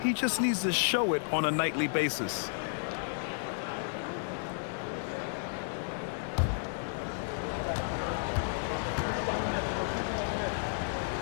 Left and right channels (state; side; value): silent; right; digital silence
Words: He just needs to show it on a nightly basis.